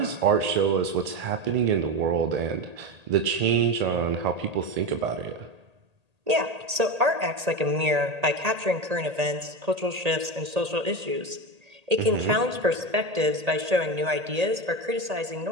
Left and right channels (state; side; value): late; left; 1.8 ms